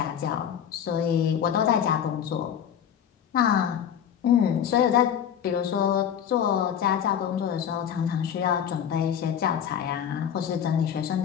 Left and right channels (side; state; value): right; quieter; 8.9 dB